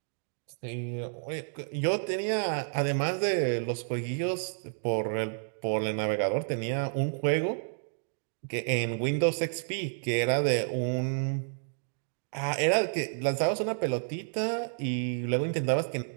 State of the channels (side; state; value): left; silent; digital silence